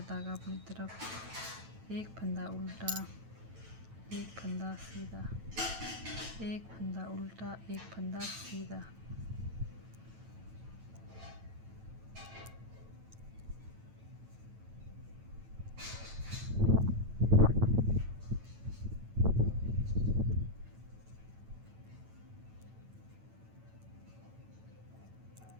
धागा अपनी तरफ, एक फंदा उल्टा, एक फंदा सीधा, एक फंदा उल्टा, एक फंदा सीधा।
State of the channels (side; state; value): left; late; 9.1 ms